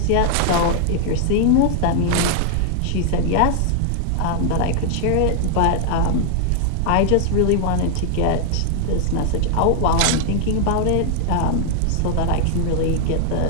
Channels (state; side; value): different; both; correlation 0.00